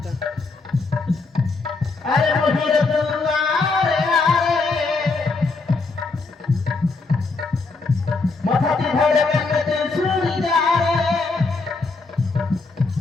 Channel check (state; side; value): quieter; right; 3.9 dB